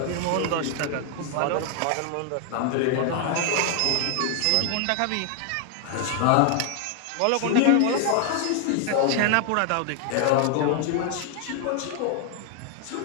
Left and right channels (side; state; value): both; different; correlation 0.00